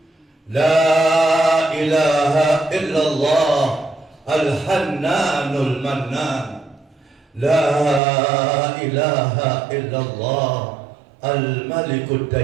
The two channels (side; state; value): left; drops out; at 8.0 s